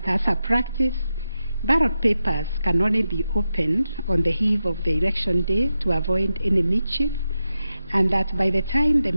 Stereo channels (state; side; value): inverted; both; correlation -0.89